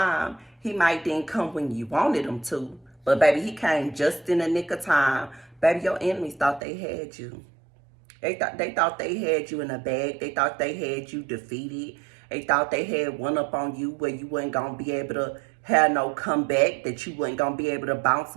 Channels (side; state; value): left; drops out; at 6.6 s